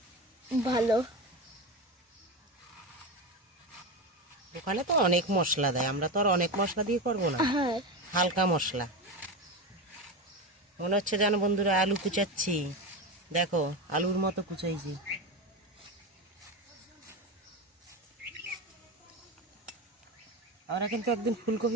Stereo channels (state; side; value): normal; both; correlation 0.20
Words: ভালো। দোকানে তো অনেক মশলা দেয়, আমরা তো আর অনেক মশলা দিয়ে করবো না, হ্যাঁ, হালকা মশলা। মনে হচ্ছে যেন বন্ধুরা আলু কুচাচ্ছি, দেখো আলুর মতো কুচাইছি। আমরা কিন্তু একদিন